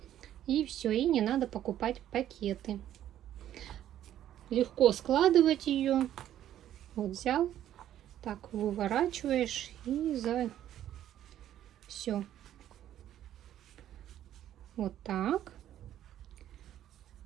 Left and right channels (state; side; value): quieter; left; 11.6 dB